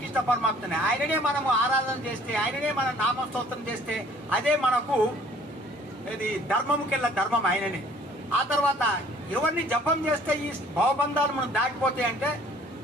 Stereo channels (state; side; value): normal; both; correlation 0.55